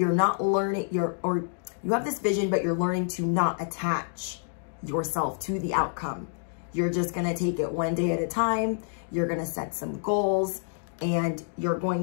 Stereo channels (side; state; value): right; silent; digital silence